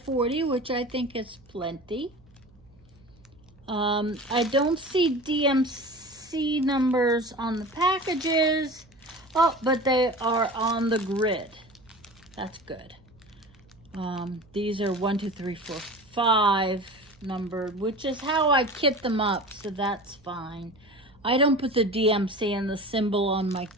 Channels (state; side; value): noise; right; hum, 29 dB below the sound